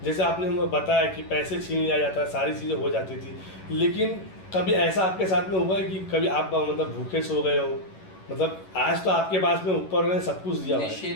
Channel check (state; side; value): late; right; 11 ms